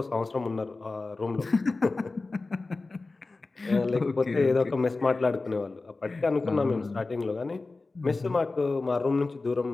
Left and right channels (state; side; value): quieter; right; 3.5 dB